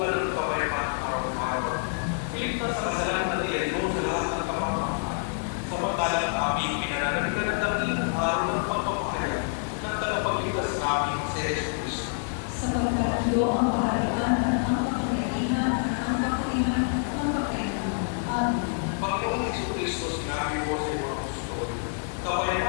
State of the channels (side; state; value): right; silent; 60 dB below the other